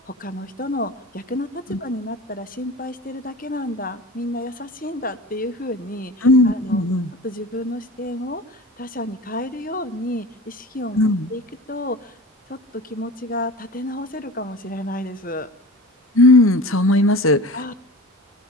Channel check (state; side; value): normal; both; correlation 0.35